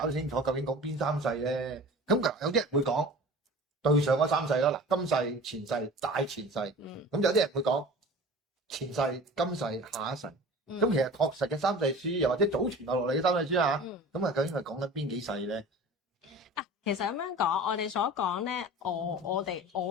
清楚究竟講邊三世咧，咁有啲人會講對上嗰三世啦，嗱今世、前世、大前世，咁有啲人會講前世、今世、下一世。咁其實確實嘅三世書，又或者祖傳落嚟嘅三世書啊，咁啊究竟係講緊邊幾世咧？其實咁樣講，我哋所講咧，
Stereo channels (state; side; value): normal; both; correlation 0.40